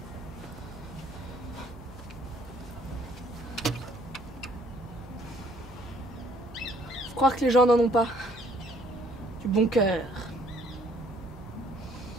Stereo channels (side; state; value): left; noise; hum, 19 dB below the sound